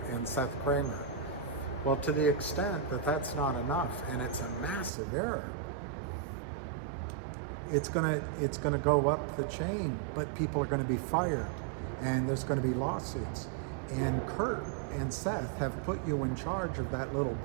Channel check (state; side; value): drops out; left; at 4.9 s